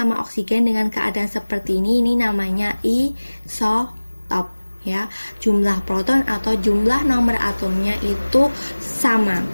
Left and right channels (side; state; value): both; inverted; correlation -1.00